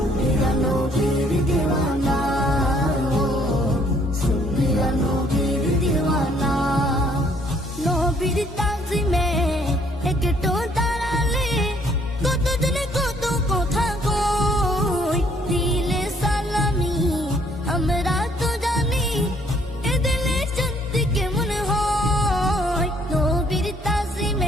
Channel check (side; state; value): both; normal; correlation 0.64